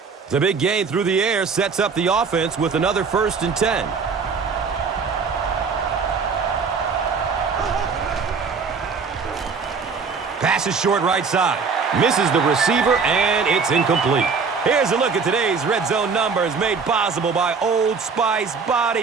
The big gain through the air sets up the offense with another 1st and 10. Passes short right side. Misses the receiver, and it's incomplete. Here's a look at today's Red Zone numbers made possible by Old Spice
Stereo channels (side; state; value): left; quieter; 5.2 dB